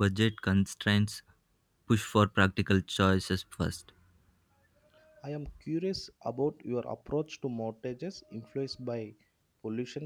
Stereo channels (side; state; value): both; identical; correlation 1.00